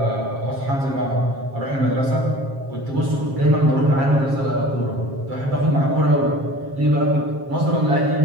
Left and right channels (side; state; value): left; late; 7.4 ms